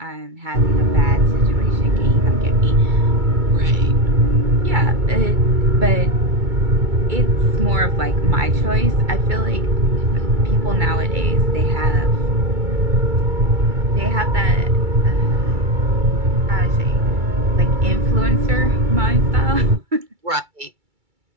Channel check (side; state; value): left; late; 2.3 ms